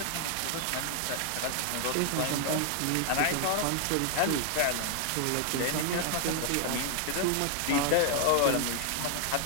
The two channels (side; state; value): both; different; correlation 0.00